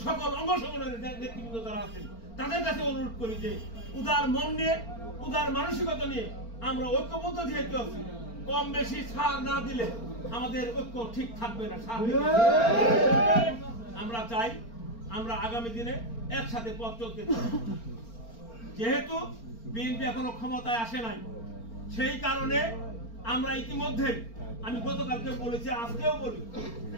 সকল অঙ্গ সংগঠনের নেতৃবৃন্দ যারা আছেন তাদের কাছে অনুরোধ করি যে উদার মন নিয়ে উদার মানসিকতা নিয়ে আমরা ঐক্যবদ্ধ যেহেতু আছি কম বেশি ছাড় না দিলে আমাদের ঐক্য ঠিক থাকবে না আমরা চাই আমরা আগামী দিনে একসাথে পথ চলতে চাই যেহেতু বিএনপি এখনো ক্ষমতায় আসে নাই সেই কারণে আমরা ইতিমধ্যে আমি গতকালকে বলেছি আজকেও বলি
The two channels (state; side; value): late; right; 4.4 ms